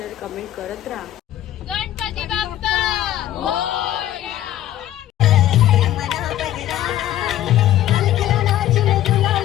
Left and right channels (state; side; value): quieter; right; 12.8 dB